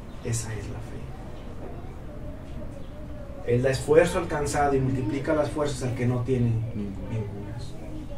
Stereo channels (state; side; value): identical; both; correlation 1.00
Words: la fe. Él da esfuerzo alcanzado y multiplica las fuerzas al que no tiene ningunas.